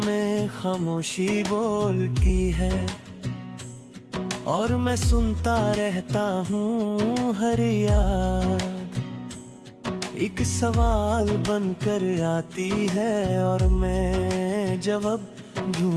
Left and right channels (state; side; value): identical; both; correlation 1.00